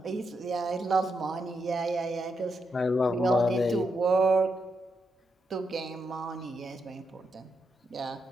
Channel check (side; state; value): both; normal; correlation 0.82